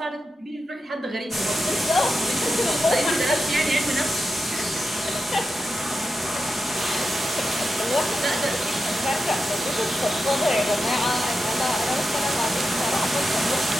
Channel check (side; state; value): both; normal; correlation 0.89